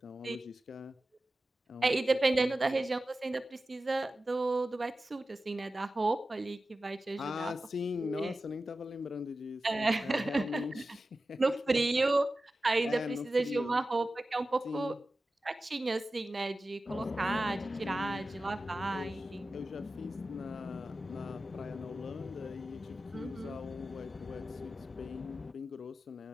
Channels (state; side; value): normal; both; correlation 0.94